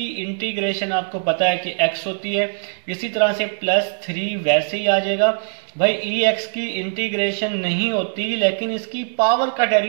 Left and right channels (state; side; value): silent; left; digital silence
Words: इंटीग्रेशन आपको पता है कि x होती है, इसी तरह से +3 वैसे ही आ जाएगा। भाई ex की इंटीग्रेशन नहीं होती, लेकिन इसकी पावर का